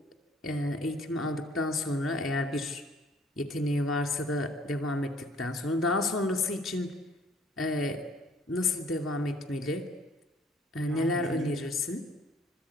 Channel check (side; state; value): both; normal; correlation 0.58